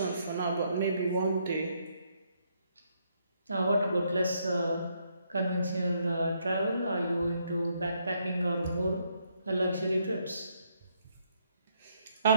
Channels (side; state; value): both; inverted; correlation -0.73